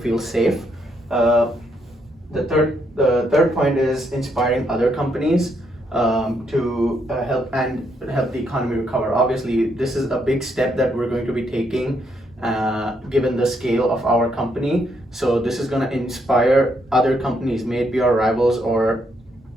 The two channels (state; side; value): normal; both; correlation 0.75